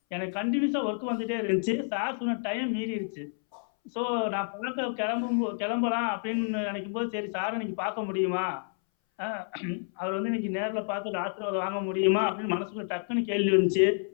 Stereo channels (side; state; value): right; silent; 58 dB below the other